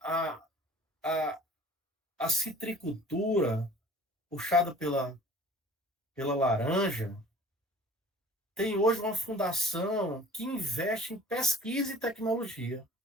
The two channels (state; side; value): normal; both; correlation 0.47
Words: a, a, a citricultura, puxada pela laranja, tem hoje uma fundação que investe em pesquisa e tecnologia,